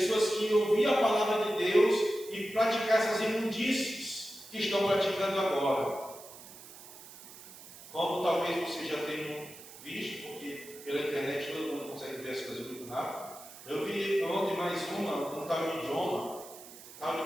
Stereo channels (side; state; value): right; noise; hiss, 17 dB below the sound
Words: que iam ouvir a palavra de Deus e praticar essas imundícies que estão praticando agora. Como talvez vocês já tenham visto, porque pela internet todo mundo consegue ver as coisas muito rápido. Eu vi ontem mais um tal de Jonah, tal